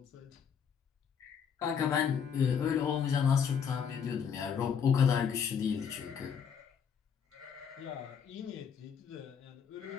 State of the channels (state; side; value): quieter; right; 7.2 dB